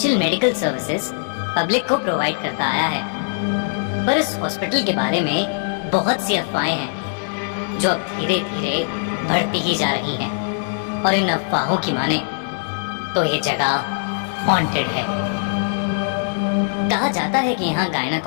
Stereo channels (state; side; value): silent; right; digital silence